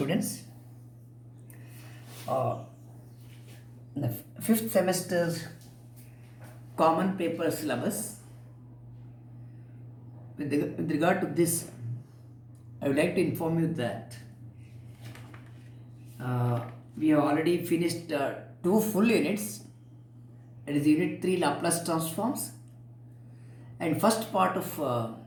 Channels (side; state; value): both; identical; correlation 1.00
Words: uh, the fifth semester's common paper syllabus, with regard to this, I would like to inform you that we have already finished two full units. It is Unit 3 Laplace transforms and first part of